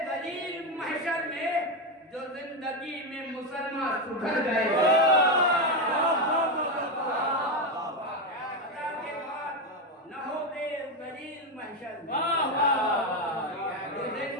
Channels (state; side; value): normal; both; correlation 0.10